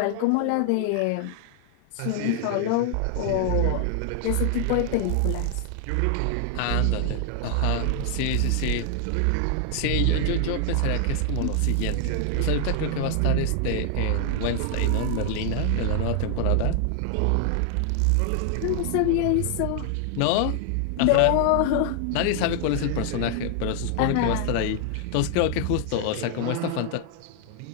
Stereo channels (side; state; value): both; different; correlation 0.00